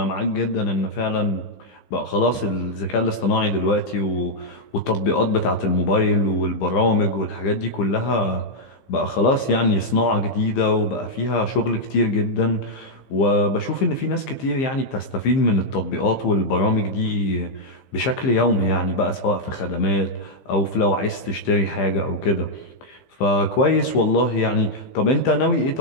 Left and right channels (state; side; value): late; right; 15 ms